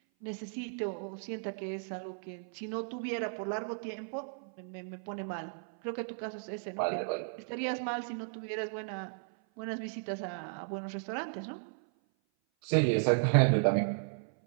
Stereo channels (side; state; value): left; silent; 54 dB below the other